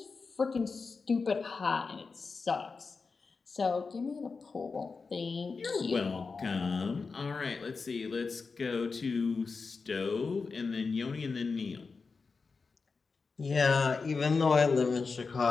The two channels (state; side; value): quieter; right; 4.6 dB